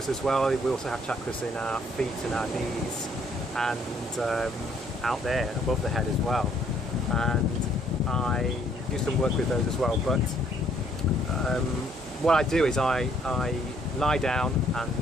as well. We also have chakras in our feet and our knees, and out there above the head as well. And I do some work with those as well. But what I do is I lie down and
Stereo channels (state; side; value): normal; both; correlation 0.65